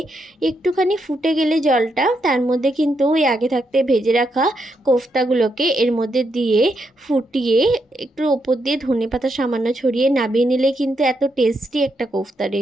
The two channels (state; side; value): normal; both; correlation 0.80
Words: একটুখানি ফুটে গেলে জলটা, তার মধ্যে কিন্তু ওই আগে থাকতে ভেজে রাখা কোফতাগুলোকে এর মধ্যে দিয়ে ফুটিয়ে একটু ওপর দিয়ে ধনেপাতা সামান্য ছড়িয়ে নামিয়ে নিলে কিন্তু এত টেস্টি একটা কোফতা